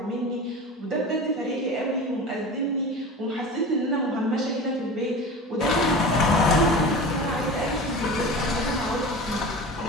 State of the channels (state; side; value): normal; both; correlation 0.33